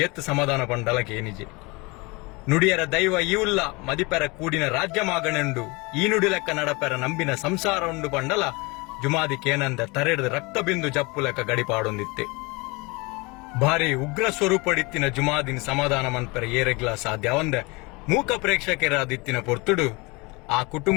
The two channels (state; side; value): quieter; right; 26.3 dB